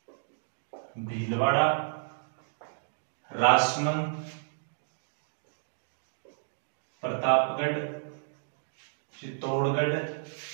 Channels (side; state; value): left; silent; digital silence